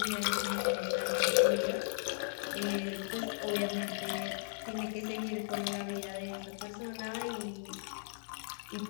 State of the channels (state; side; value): silent; right; digital silence